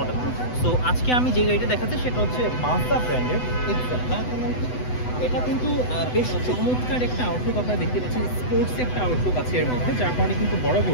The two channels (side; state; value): right; late; 8.0 ms